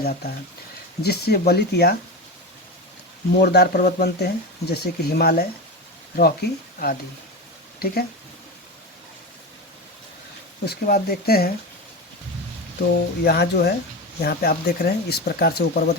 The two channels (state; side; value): normal; both; correlation 0.21